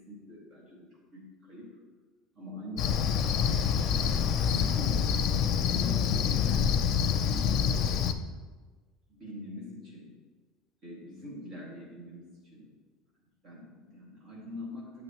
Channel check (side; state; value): right; quieter; 6.8 dB